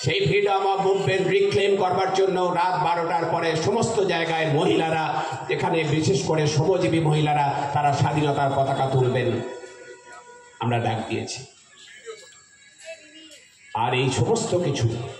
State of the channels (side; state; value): both; identical; correlation 1.00